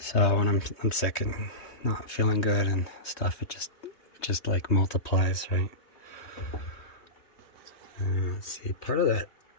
when I'm sick and not feeling good and stuff, it just like multiplies, right? Let's see. Part of that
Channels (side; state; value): right; late; 3.2 ms